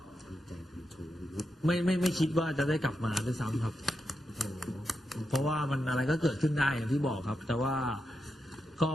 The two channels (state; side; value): normal; both; correlation 0.86